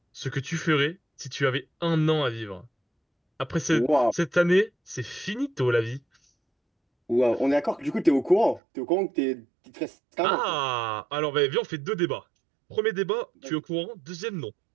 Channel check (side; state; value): left; drops out; at 8.6 s